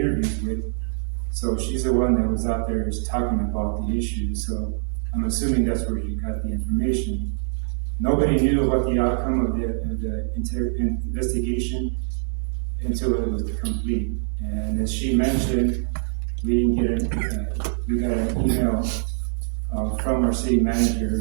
with. So she's the one that was out there just talking about the issue. So I'm assuming that's where she got the information. Nobody knew what the outcome of the investigation until it was complete. And as she mentioned, we got an email from our city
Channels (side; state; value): left; silent; 63 dB below the other